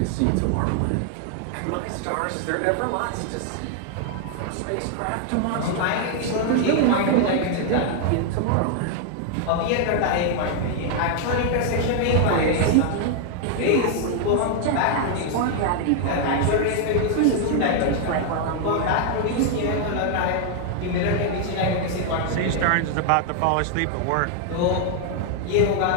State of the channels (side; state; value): both; different; correlation 0.00